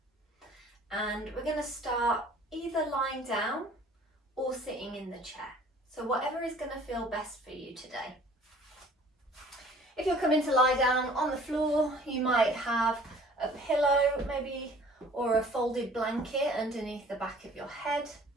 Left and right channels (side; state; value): both; normal; correlation 0.52